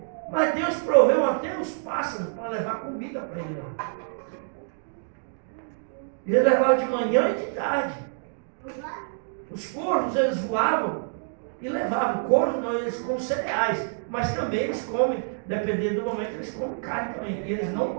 Mas Deus proveu até os pássaros para levar comida para ele lá. Ele levava de manhã e de tarde. Os corvos, eles voavam e levavam. Corvos não, eles comem cereais, mas também eles comem, dependendo do momento, eles comem carne também. E eles não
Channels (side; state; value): left; silent; digital silence